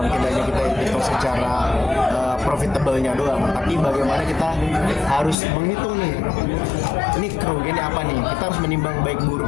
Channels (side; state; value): right; drops out; at 5.4 s